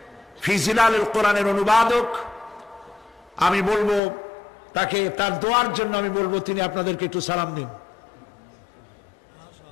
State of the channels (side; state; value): right; drops out; at 4.0 s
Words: ফি জিলালিল কোরআনের অনুবাদক। আমি বলবো তাকে, তার দোয়ার জন্য আমি বলবো তিনি আপনাদেরকে একটু সালাম দিন।